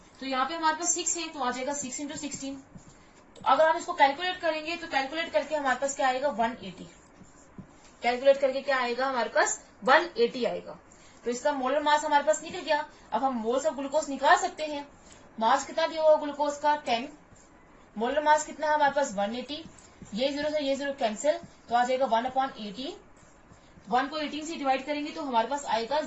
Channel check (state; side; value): identical; both; correlation 1.00